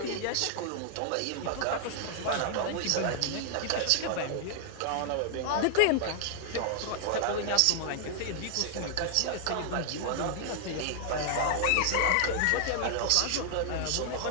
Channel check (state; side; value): different; both; correlation 0.00